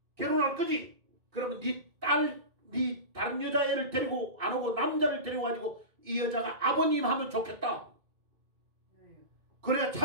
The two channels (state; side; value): late; left; 2.3 ms